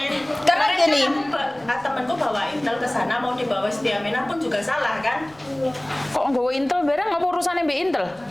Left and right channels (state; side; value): noise; left; rumble, 27 dB below the sound